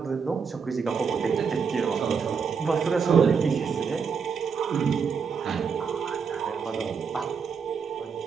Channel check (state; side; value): quieter; left; 6.0 dB